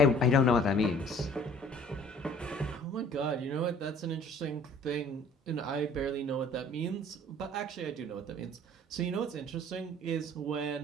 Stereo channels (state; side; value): normal; both; correlation 0.52